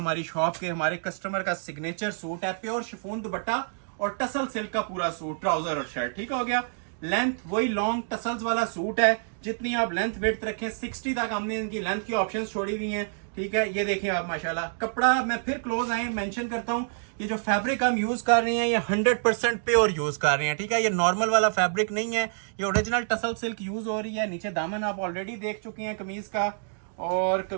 शॉप के, हमारे कस्टमर का सिग्नेचर सूट है। प्योर शिफॉन दुपट्टा और टसल सिल्क का पूरा सूट, ट्राउजर और शर्ट, ठीक हो गया। लेंथ वही लॉन्ग टसल्स वाला सूट है, जितनी आप लेंथ विड्थ रखें 60 तक हमने इनकी लेंथ की ऑप्शंस छोड़ी हुई हैं, ठीक है। ये देखिए आप माशाल्लाह। कपड़ा मैं फिर क्लोज आए मेंशन करता हूं, ये जो फैब्रिक हम यूज कर रहे हैं ये 100% प्योर यूज कर रहे हैं, ठीक है। ये नॉर्मल वाला फैब्रिक नहीं है, ये ओरिजिनल टसल सिल्क यूज हो रही है। नीचे दामन आप ऑलरेडी देख चुके हैं कमीज का। और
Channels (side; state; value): left; silent; digital silence